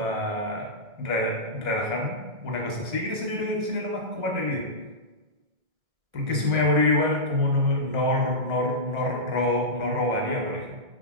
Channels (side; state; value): left; late; 1.4 ms